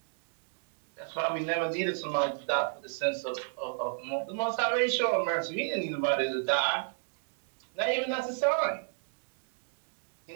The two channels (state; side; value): silent; left; digital silence